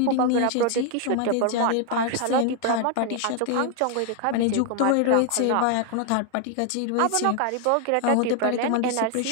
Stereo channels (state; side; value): different; both; correlation 0.00